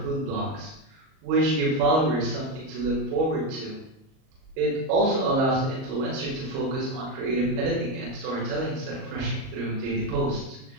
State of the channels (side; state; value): left; late; 38 ms